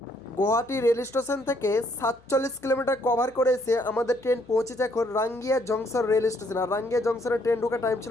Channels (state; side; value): noise; left; hum, 28 dB below the sound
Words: Guwahati rail station থেকে 47 কিলোমিটার কভার করে এসে আমাদের ট্রেন পৌঁছেছে এখন রাঙ্গিয়া জংশন রেল স্টেশন। আর রাঙ্গিয়া জংশনের ট্রেন ঢোকার টাইম